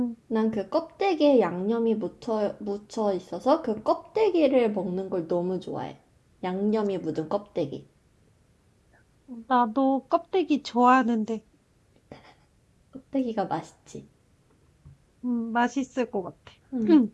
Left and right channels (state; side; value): identical; both; correlation 1.00